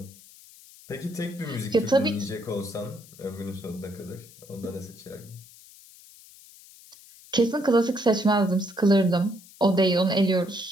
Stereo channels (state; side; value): noise; left; hiss, 22 dB below the sound